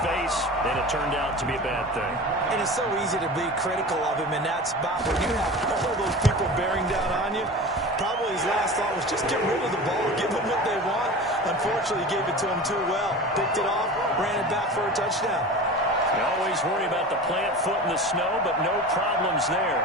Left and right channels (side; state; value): both; normal; correlation 0.34